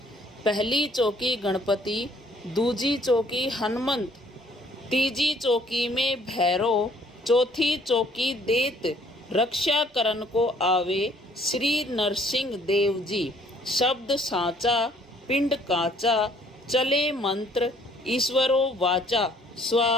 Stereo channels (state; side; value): normal; both; correlation 0.61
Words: पहली चौकी गणपति, दूजी चौकी हनुमंत, तीजी चौकी में भैरव, चौथी चौकी देत, रक्षा करन को आवे श्री नरसिंह देव जी। शब्द साचा पिंड काचा, चले मंत्र ईश्वरो वाचा।